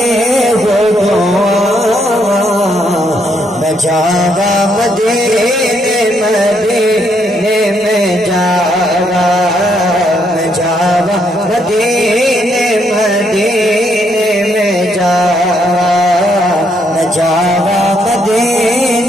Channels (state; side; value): normal; both; correlation 0.74